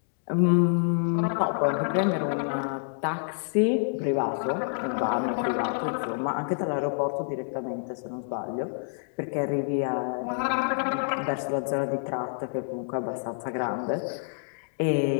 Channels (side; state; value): right; silent; digital silence